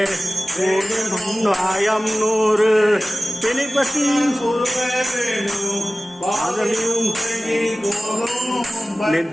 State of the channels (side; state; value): both; normal; correlation 0.97